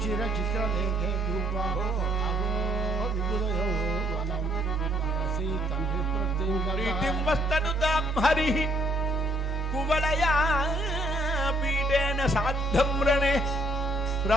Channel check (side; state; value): both; normal; correlation 0.67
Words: చిత్రలేఖే రూపా అహో విపులయో వనం మనసి తండ్రి ప్రీతిం వస్తనుతాం హరి కువలయా పీఠేన సాద్ధం రణే